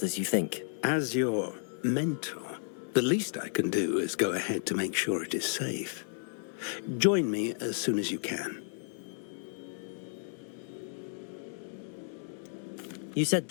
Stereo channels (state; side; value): silent; right; digital silence